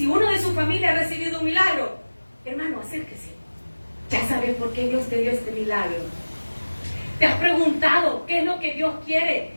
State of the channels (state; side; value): inverted; both; correlation -1.00